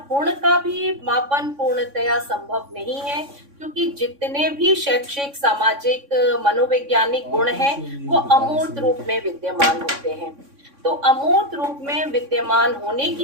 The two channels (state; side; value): late; left; 3.6 ms